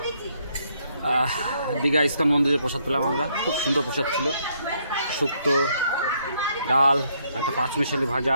দীঘা ইস্কন মন্দিরে প্রসাদ পেলাম আমরা, খুব সুন্দর প্রসাদ ছিল। শুক্তো, ডাল, একটা পাঁচমিশালি ভাজা,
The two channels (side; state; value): both; inverted; correlation -0.71